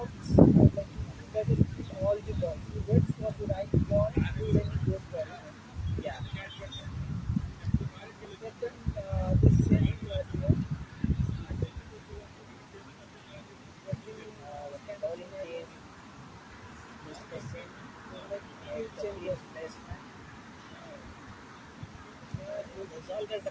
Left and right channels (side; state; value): both; identical; correlation 1.00